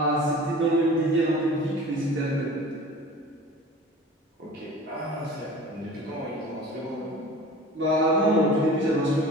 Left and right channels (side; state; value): both; normal; correlation 0.41